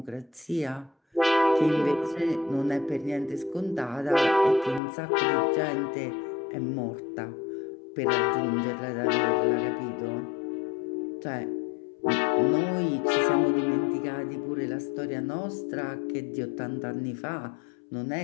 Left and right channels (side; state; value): right; drops out; at 4.8 s